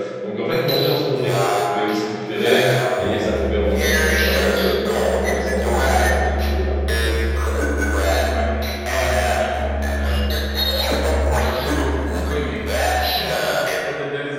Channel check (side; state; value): both; identical; correlation 1.00